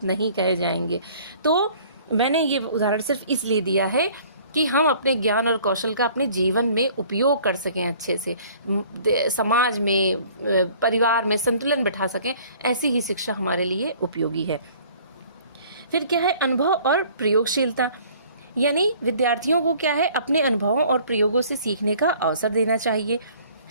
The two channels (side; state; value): both; inverted; correlation -0.53